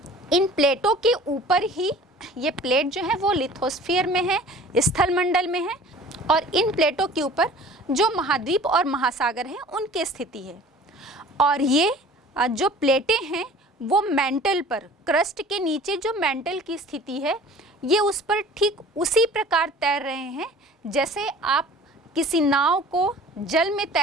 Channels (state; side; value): normal; both; correlation 0.46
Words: इन प्लेटों के ऊपर ही ये प्लेट जो है वो लिथोस्फीयर में है, स्थल मंडल में है, और इन प्लेटों के ऊपर जो महाद्वीप और महासागर हैं उनकी स्थिति है। और ये जो प्लेटें हैं वो मेंटल पर, क्रस्ट के नीचे जो मेंटल की स्थिति है ये उस पर ठीक उसी प्रकार तैर रहे हैं जैसे आप किसी नाव को जल में